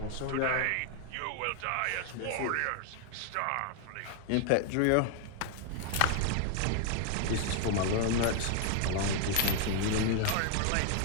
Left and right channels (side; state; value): both; different; correlation 0.01